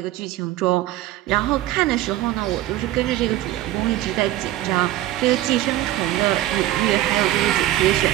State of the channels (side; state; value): left; quieter; 14.5 dB